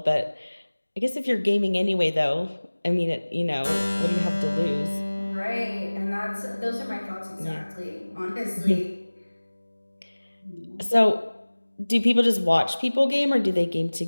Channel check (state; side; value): inverted; both; correlation -1.00